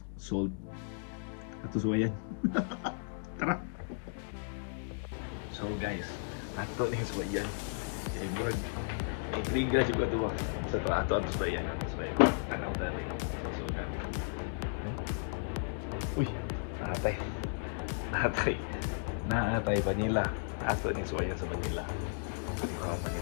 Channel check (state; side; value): silent; right; digital silence